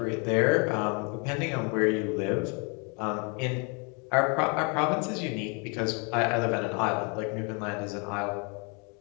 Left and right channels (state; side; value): quieter; right; 33.9 dB